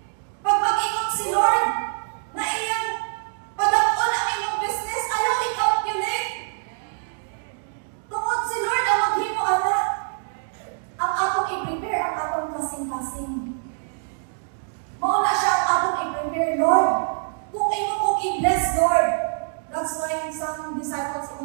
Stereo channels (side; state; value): left; silent; digital silence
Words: Pag mag-ingon si Lord, na iyang padakon ang iyong business, ayaw i-calculate. Tungod si Lord ang maghimo ana. Ang atong i-prepare, ang atong kasing-kasing. Mauna siya ang atong i-prepare, Lord. Kung imo kong i-bless, Lord. That's why some disciples